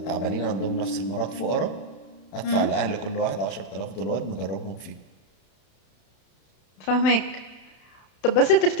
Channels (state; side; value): late; right; 31 ms